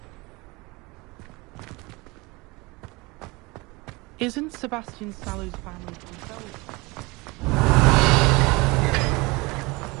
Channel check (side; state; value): left; quieter; 24.5 dB